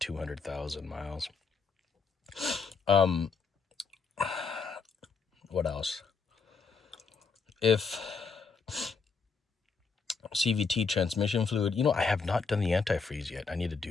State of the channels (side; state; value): right; quieter; 5.0 dB